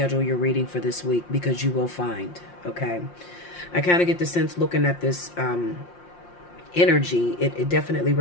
your reading for this week because you will find, okay? I kind of get the sense looking at this energy, it definitely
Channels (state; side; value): late; right; 5.7 ms